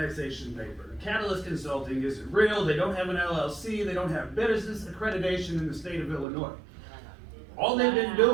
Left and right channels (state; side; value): drops out; left; at 6.2 s